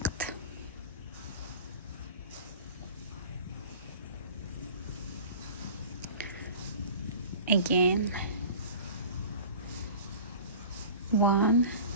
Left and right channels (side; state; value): both; inverted; correlation -0.40